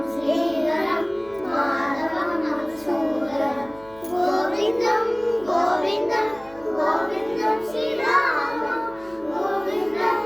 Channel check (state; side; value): noise; right; hum, 23 dB below the sound